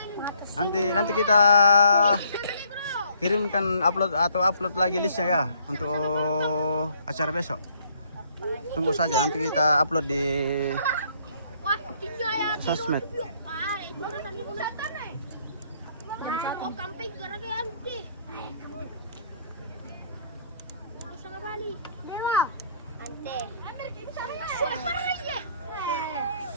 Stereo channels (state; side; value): inverted; both; correlation -0.64